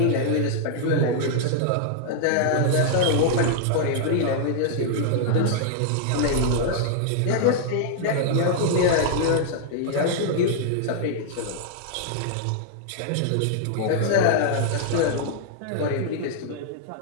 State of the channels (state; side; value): different; both; correlation -0.01